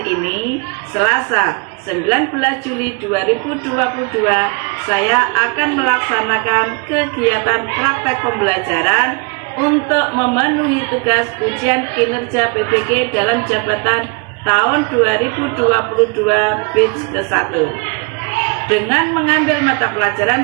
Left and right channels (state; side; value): quieter; left; 33.2 dB